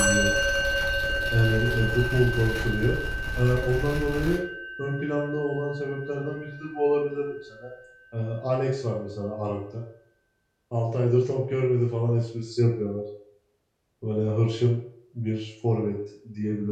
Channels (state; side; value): identical; both; correlation 1.00